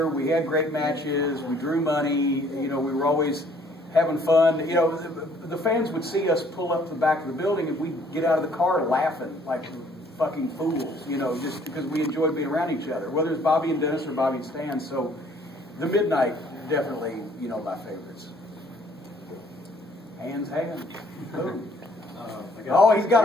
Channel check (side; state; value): both; normal; correlation 0.61